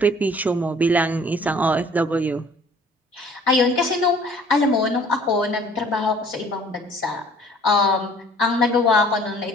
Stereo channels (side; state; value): both; normal; correlation 0.54